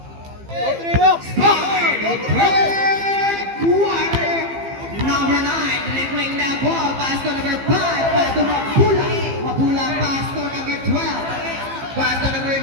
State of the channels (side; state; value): left; late; 15 ms